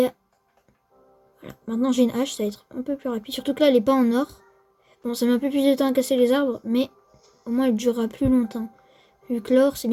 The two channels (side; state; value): both; identical; correlation 1.00